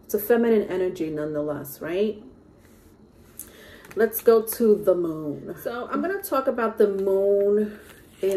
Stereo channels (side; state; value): both; identical; correlation 1.00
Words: It's a feminine energy nonetheless, right? Let's go to the moon. So I'm going to talk about the moon